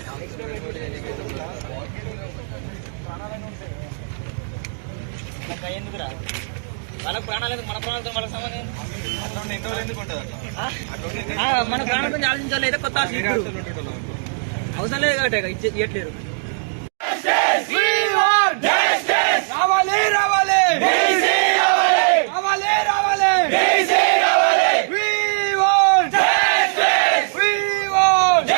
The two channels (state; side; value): silent; left; digital silence